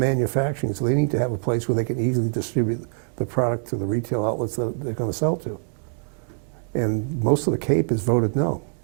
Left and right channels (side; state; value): left; silent; 57 dB below the other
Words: so they need to have a place where they can easily distribute the product to the retail outlets that they're going to sell to. And most of the Cape has voted no.